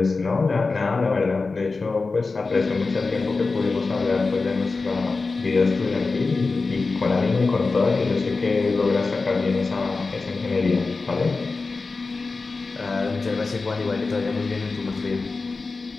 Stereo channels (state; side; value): quieter; right; 4.0 dB